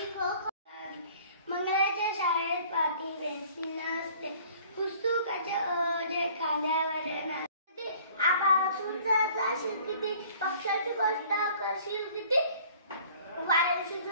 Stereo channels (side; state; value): both; inverted; correlation -0.53